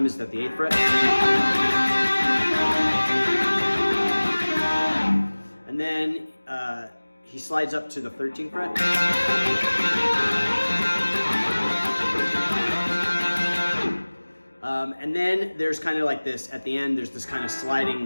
is at the 8th fret. And then he slides up to the 13th fret. And then there's kind of like this, at the end, there's this kind of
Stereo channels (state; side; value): inverted; both; correlation -1.00